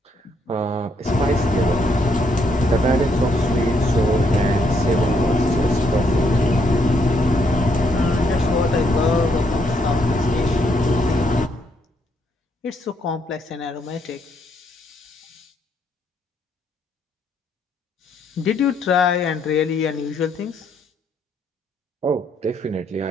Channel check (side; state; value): both; normal; correlation 0.73